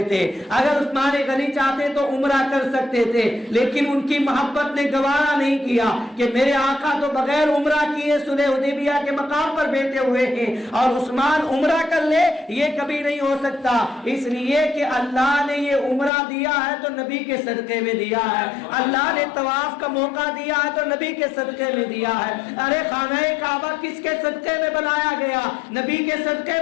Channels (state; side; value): drops out; right; at 16.1 s